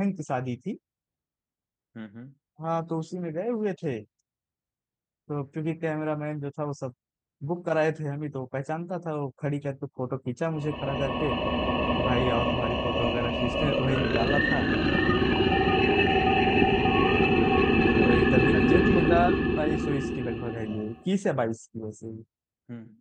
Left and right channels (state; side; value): identical; both; correlation 1.00